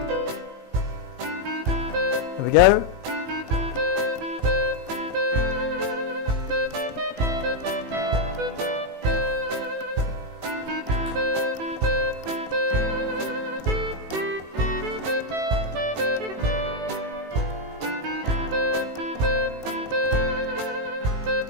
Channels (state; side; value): late; left; 18 ms